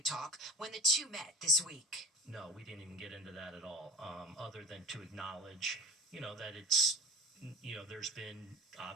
talk when the two met this week. No, we didn't even get into that at all, other than to acknowledge, that it's, there's been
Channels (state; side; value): normal; both; correlation 0.35